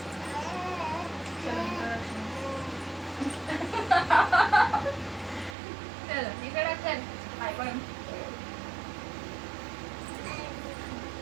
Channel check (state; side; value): drops out; left; at 5.6 s